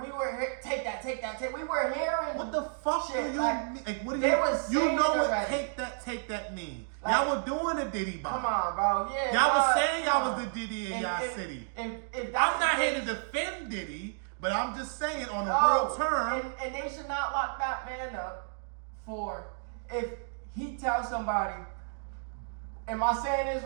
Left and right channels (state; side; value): silent; left; digital silence